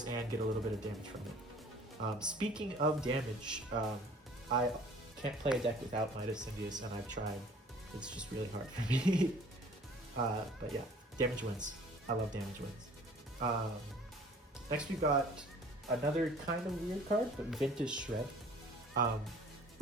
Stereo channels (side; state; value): both; normal; correlation 0.51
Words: and get a little bit of damage from it. Speaking of damage, I can't play a deck without Midas Syndius, and I've tried. It's just really hard for me. But yeah, damage wins. I love damage wins. Next we've got another kind of weird card, but Ventus Shred.